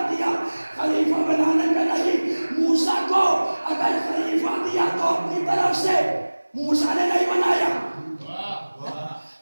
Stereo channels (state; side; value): inverted; both; correlation -1.00